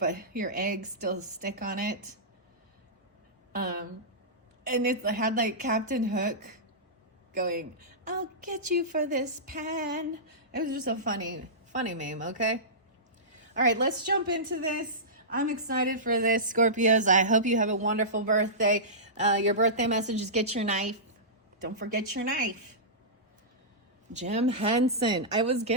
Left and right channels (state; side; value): normal; both; correlation -0.18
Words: your eggs still stick on it. And it had like Captain Hook going, "I'll get you for this pan." It was just a funny meme, okay? All right, let's jump into this. I'm excited for this, Scorpios. I hope you have a wonderful birthday. Your birthday message is get your knife. Don't forget your knife. Jim Henson. I was